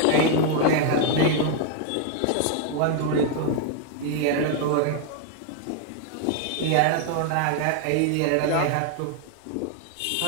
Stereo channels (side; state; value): both; different; correlation 0.00